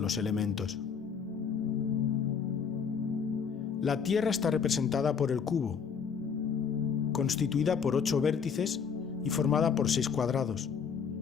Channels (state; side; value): quieter; right; 6.5 dB